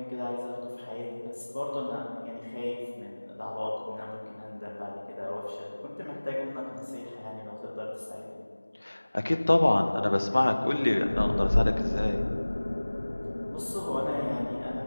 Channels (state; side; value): inverted; both; correlation -1.00